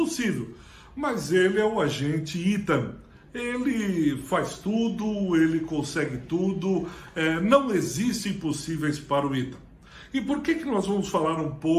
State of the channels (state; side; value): identical; both; correlation 1.00